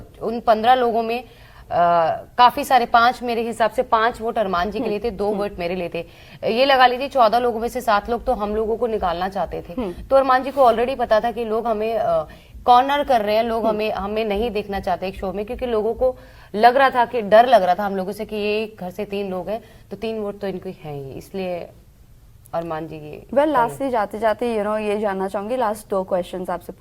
उन 15 लोगों में काफी सारे, 5 मेरे हिसाब से 5 वोट अरमान जी के लिए थे, 2 वोट मेरे लिए थे। ये लगा लीजिए 14 लोगों में से 7 लोग तो हम लोगों को निकालना चाहते थे। तो अरमान जी को ऑलरेडी पता था कि लोग हमें कॉर्नर कर रहे हैं, लोग हमें नहीं देखना चाहते एक शो में, क्योंकि लोगों को लग रहा था कि डर लग रहा था हम लोगों से कि ये घर से 3 लोग हैं तो 3 वोट तो इनको हैं ही, इसलिए अरमान जी ये लास्टली जाते जाते ये जानना चाहूंगी, लास्ट 2 क्वेश्चंस आपसे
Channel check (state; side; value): identical; both; correlation 1.00